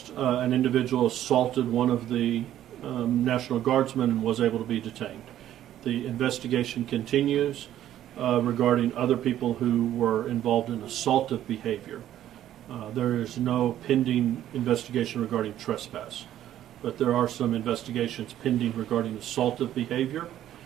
An individual assaulted one of the National Guardsmen and was able to be detained. The investigation continues regarding other people who were involved in assaultive behavior. There is no pending investigation regarding trespass, but there are some investigations pending regarding assaultive behavior.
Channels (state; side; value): quieter; left; 12.0 dB